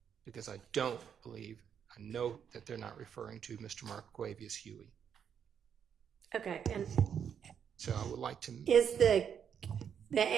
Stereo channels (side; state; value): left; quieter; 7.9 dB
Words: because I don't believe, I know that they're not referring to Mr. Marquavius Huey. Okay, and So I would like to. is the